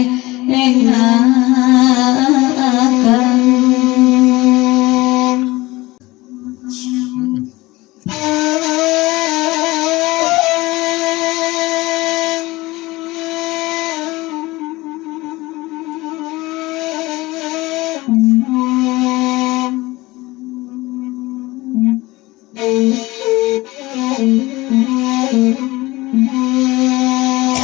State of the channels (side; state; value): right; quieter; 20.4 dB